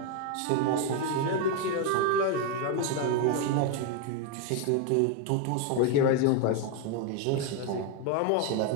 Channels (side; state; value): both; different; correlation 0.01